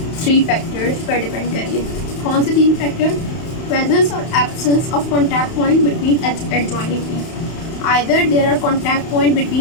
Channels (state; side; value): late; right; 31 ms